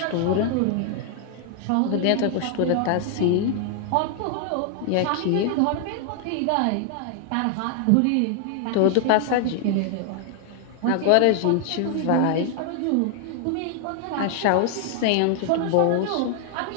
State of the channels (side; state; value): both; different; correlation 0.00